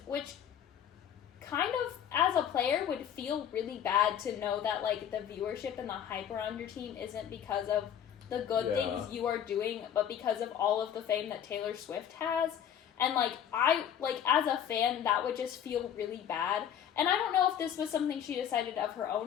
which kind of, as a player, would feel really bad to know that, like, the viewership and the hype around your team isn't because of the good things you are doing, but because of all of the fame that Taylor Swift has. And, like, as a fan, that would just feel really bad. And I don't know if this was something she decided of her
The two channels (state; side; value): quieter; right; 9.4 dB